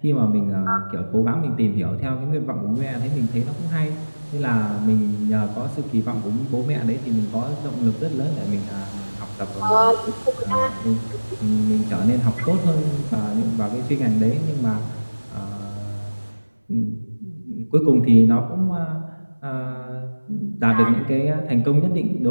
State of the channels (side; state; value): both; inverted; correlation -1.00